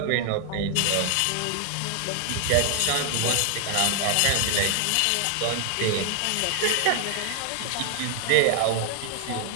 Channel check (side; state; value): both; different; correlation 0.00